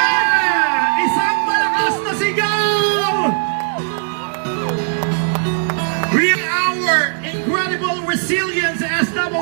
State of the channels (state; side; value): silent; left; digital silence